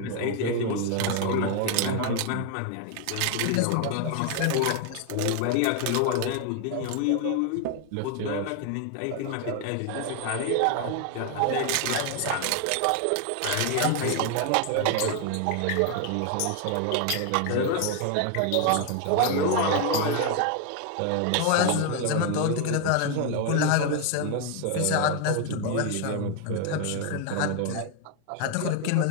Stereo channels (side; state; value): both; different; correlation 0.00